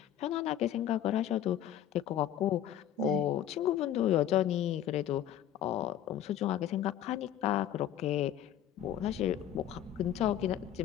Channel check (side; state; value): right; quieter; 10.9 dB